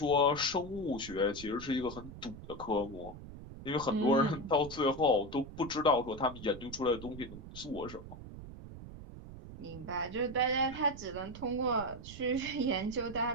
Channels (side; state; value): right; noise; rumble, 13 dB below the sound